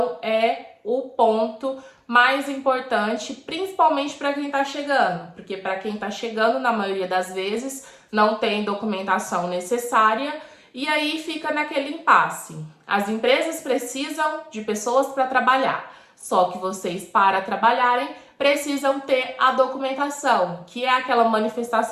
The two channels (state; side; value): identical; both; correlation 1.00